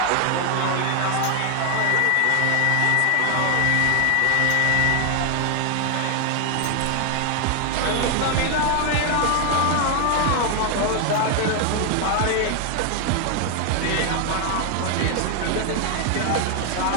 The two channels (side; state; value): both; different; correlation 0.00